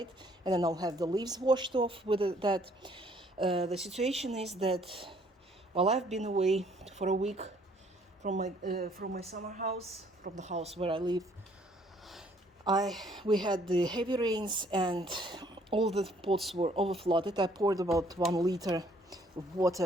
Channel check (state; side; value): normal; both; correlation 0.62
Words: and then I'll have the leaves washed off with that. The situation is that while I've been away for a week from my summer house, from the house where I live, we had the heavy rains and all the pots were overflooded. I poured about 1 liter of